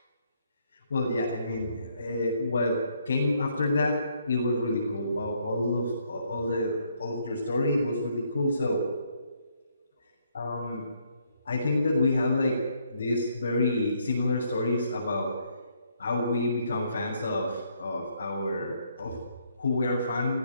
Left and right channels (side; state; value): both; inverted; correlation -0.71